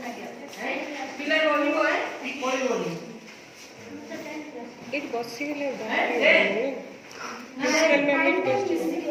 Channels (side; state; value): both; identical; correlation 1.00